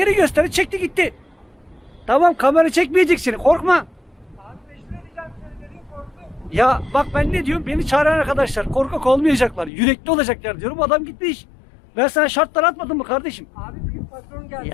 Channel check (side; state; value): right; drops out; at 9.7 s